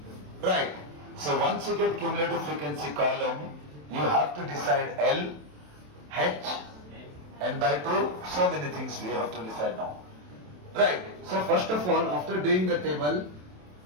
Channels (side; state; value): left; late; 27 ms